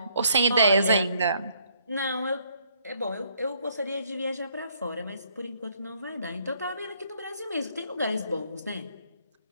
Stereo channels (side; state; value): both; inverted; correlation -0.67